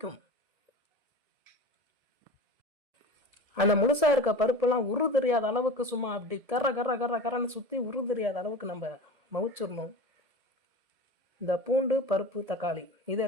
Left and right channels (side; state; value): left; late; 1.8 ms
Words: அந்த முழுசாக இருக்க பருப்பெல்லாம் உரு தெரியாத அளவுக்கு சும்மா அப்படி கர்ற கர்ற கர்ற கரன்னு சுற்றி உரு தெரியாத அளவுக்கு நம்ம மவிச்சிடணும். இந்த பூண்டு, பருப்பு, தக்காளி